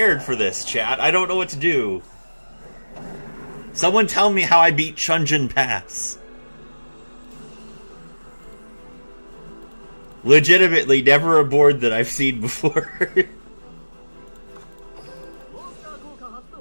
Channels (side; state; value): both; inverted; correlation -1.00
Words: for this, chat. I don't know what to do. Someone tell me how I beat Chunjin Pass. Legitimately, never a board that I've seen before.